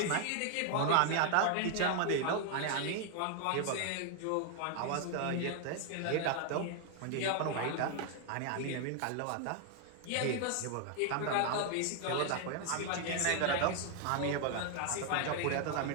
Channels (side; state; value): both; different; correlation 0.00